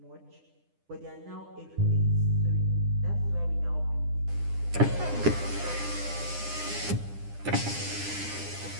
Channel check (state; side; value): late; left; 9.9 ms